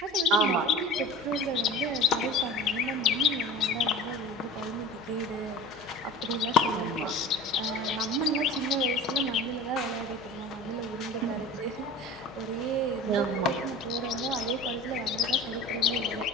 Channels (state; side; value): normal; both; correlation 0.37